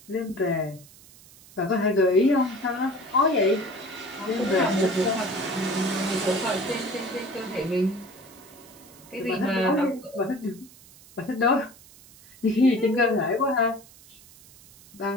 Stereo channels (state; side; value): noise; right; hiss, 23 dB below the sound